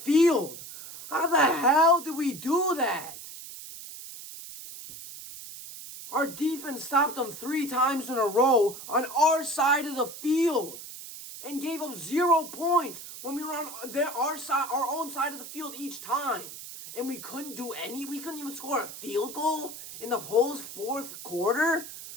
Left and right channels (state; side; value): noise; right; hiss, 12 dB below the sound